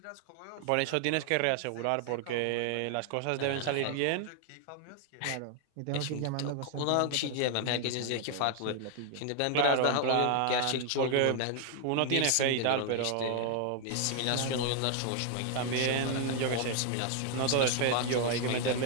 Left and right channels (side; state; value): both; different; correlation 0.00